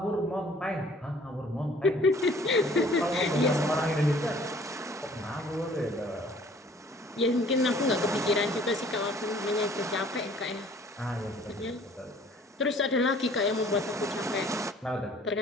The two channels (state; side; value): normal; both; correlation 0.54